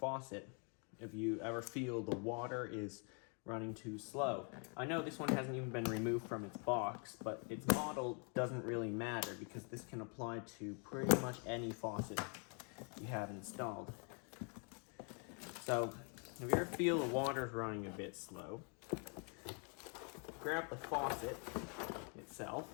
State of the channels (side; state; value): right; quieter; 38.5 dB